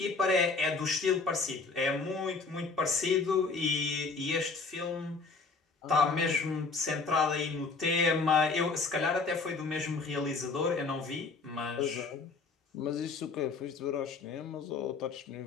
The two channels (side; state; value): right; quieter; 4.2 dB